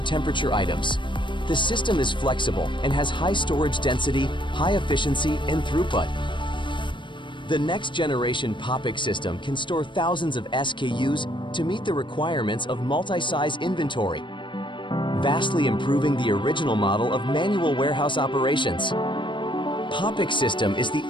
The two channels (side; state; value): right; late; 0.23 ms